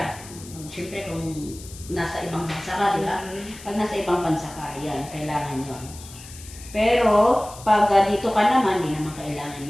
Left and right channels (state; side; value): noise; left; hiss, 17 dB below the sound